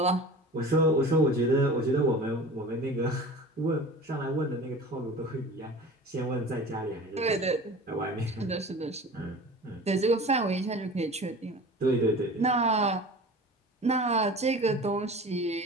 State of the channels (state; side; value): normal; both; correlation 0.39